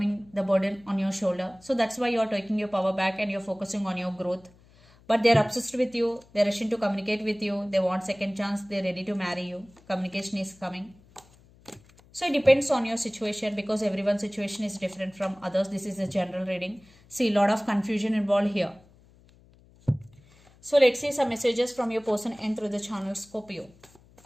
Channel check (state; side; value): noise; left; hum, 27 dB below the sound